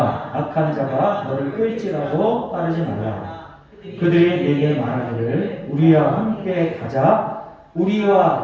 악한 자가 너를 끌지라도 따르지 말라. 그들이 내게 말하기를 우리와 함께 가자.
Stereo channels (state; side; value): identical; both; correlation 1.00